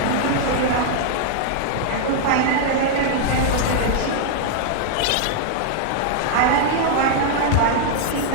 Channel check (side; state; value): both; different; correlation -0.01